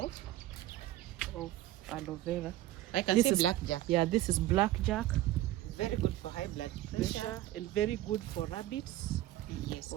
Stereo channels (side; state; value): left; quieter; 15.0 dB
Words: aloe vera. I can see blackjack. Yeah, this is blackjack. Very good for high blood pressure and very good for rabbits. Yes.